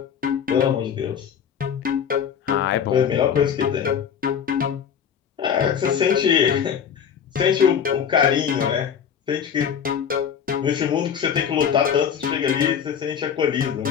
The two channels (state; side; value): quieter; right; 7.8 dB